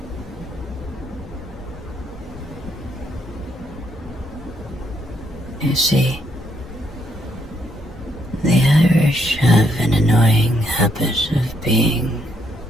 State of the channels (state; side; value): normal; both; correlation 0.74